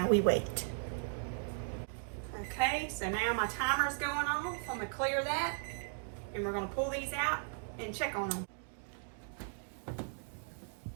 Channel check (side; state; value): left; silent; digital silence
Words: we wait. Okay, so now my timer's going on. So I'm going to clear that. And we're going to pull these out and check on them.